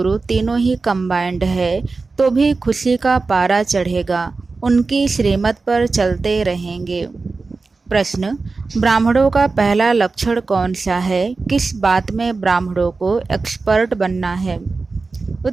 तीनों ही कंबाइंड है तो भी खुशी का पारा चढ़ेगा। उनकी श्रीमत पर चलते रहेंगे। प्रश्न, ब्राह्मणों का पहला लक्षण कौन सा है? किस बात में ब्राह्मणों को एक्सपर्ट बनना है?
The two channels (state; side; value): quieter; left; 4.0 dB